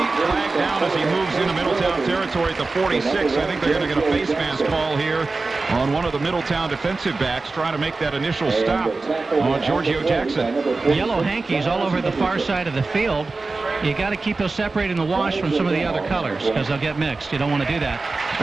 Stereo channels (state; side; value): quieter; left; 3.7 dB